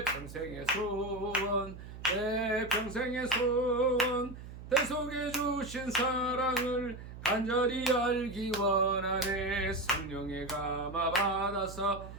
평생의 소원 내 평생의 소원 대속해 주신 사랑을 간절히 알기 원하네 성령의 감화 받아서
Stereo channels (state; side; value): noise; right; hum, 13 dB below the sound